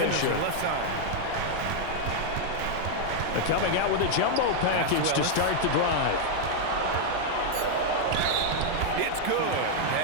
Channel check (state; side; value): different; both; correlation 0.00